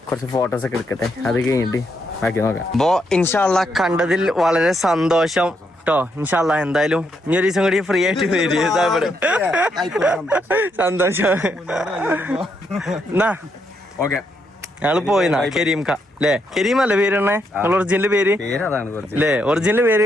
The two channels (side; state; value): both; normal; correlation 0.78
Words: കുറച്ച് ഫോട്ടോസ് ഒക്കെ എടുക്കട്ടെ, അത് കഴിഞ്ഞിട്ട് ബാക്കി നോക്കാം. അപ്പോ ഇൻഷാല്ല കണ്ടതിൽ വളരെ സന്തോഷം ട്ടോ. ഇൻഷാല്ല എന്തായാലും ഇനി ഒരു ദിവസം കൂടി ഫ്രീ ആയിട്ട് വരും. ഇവിടെ സന്തോഷം. എന്നാ ഓക്കെ, ഞങ്ങള് പോയിന്നാ കരീംക അല്ലേ? കരീം അല്ലേ പേര് തന്നെ ഒറിജിനൽ പേര് അല്ലേ? ഒറിജിനൽ പേര്